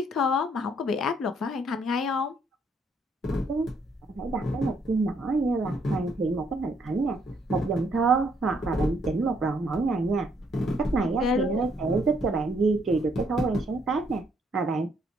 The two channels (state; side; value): normal; both; correlation 0.70